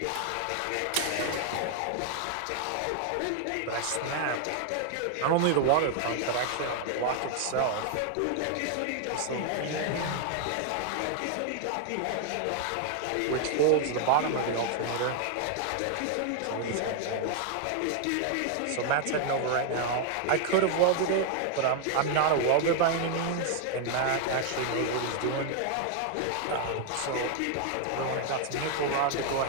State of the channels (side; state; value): both; different; correlation 0.00